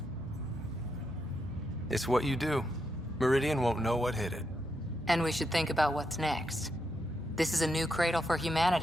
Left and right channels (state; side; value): normal; both; correlation 0.82